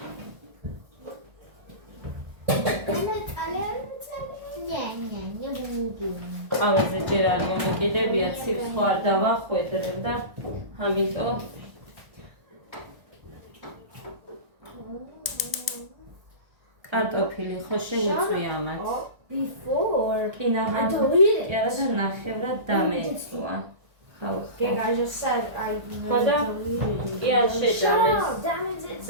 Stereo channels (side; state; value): left; late; 1.4 ms